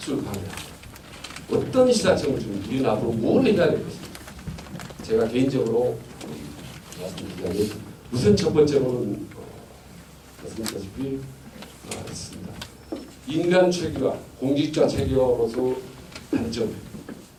강의하고 어떤 시사점을 주면 우리는 앞으로 뭘 해야 될 것인가? 제가 개인적으로 말씀드리자면 우선 첫 번째로는 말씀드렸다시피 있습니다. 인간 체계와 공직자 체계로서 단점,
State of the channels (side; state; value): both; identical; correlation 1.00